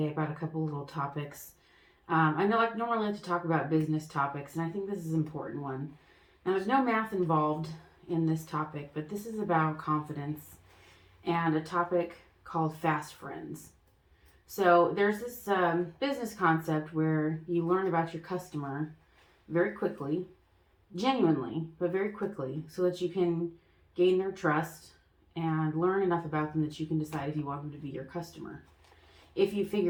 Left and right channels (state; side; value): identical; both; correlation 1.00